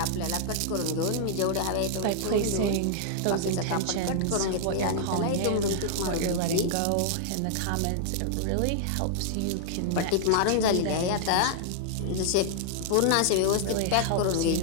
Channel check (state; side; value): different; both; correlation -0.01